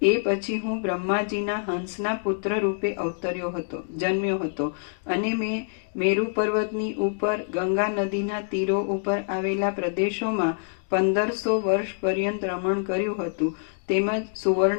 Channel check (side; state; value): right; silent; digital silence